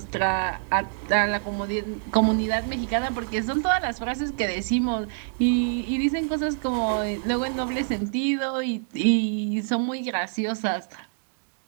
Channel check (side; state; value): left; silent; digital silence